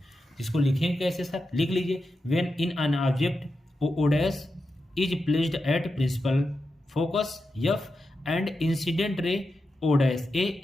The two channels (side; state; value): both; normal; correlation 0.89